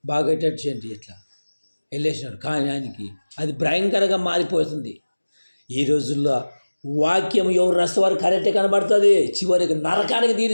బాగా చేయండి ఇట్లా వెళ్ళేసినాడు. కానీ ఆయనకి అది భయంకరంగా మారిపోతుంది. ఈ రోజుల్లో వాక్యం ఎవరు రసవారు కరెక్టే కనబడుతుంది, చివరికి నరకానికి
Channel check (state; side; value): inverted; both; correlation -1.00